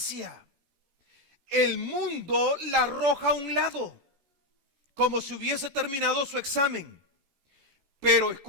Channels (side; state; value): left; late; 14 ms